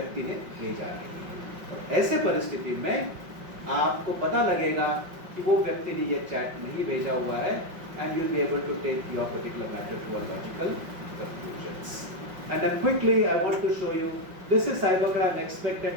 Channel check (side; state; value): left; late; 5.5 ms